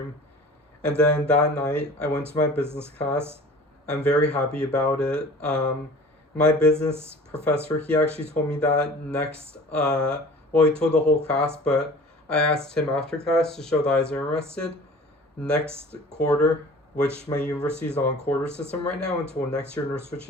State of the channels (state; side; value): normal; both; correlation 0.44